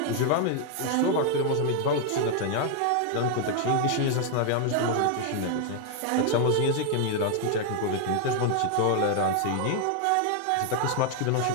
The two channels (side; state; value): both; different; correlation 0.00